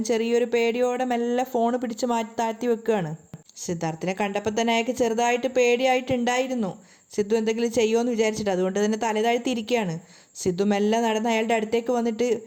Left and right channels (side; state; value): both; identical; correlation 1.00